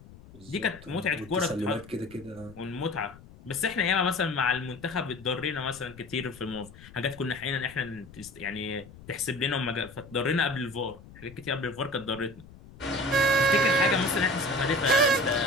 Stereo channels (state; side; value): noise; left; rumble, 20 dB below the sound